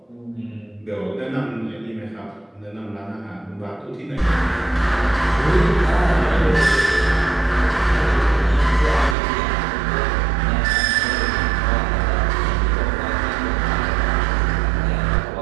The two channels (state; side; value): drops out; left; at 9.2 s